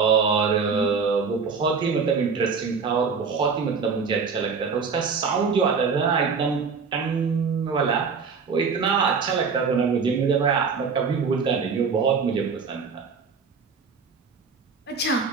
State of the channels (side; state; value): left; quieter; 5.3 dB